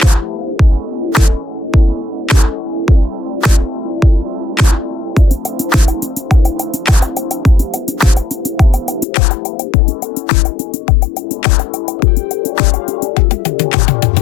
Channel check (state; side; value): drops out; right; at 9.1 s